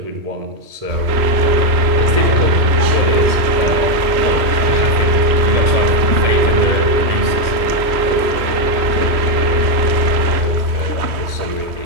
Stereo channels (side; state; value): left; late; 3.1 ms